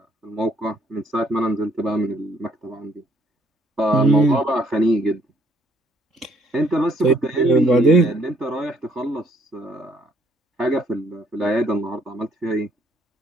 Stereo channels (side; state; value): both; normal; correlation 0.65